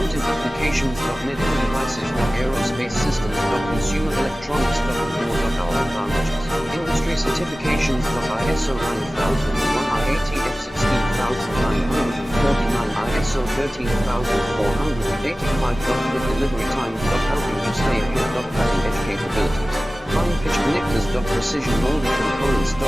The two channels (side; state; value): both; normal; correlation 0.96